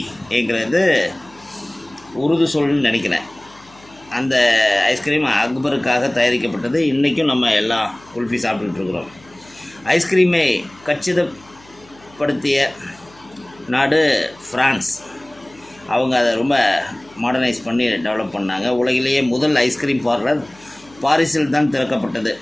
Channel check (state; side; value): noise; left; hum, 26 dB below the sound